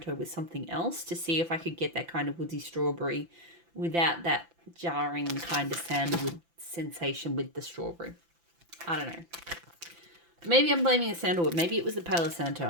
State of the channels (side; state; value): left; late; 5.9 ms